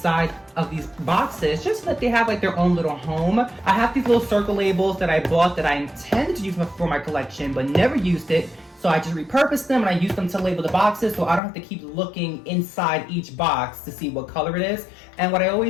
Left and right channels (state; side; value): drops out; right; at 11.4 s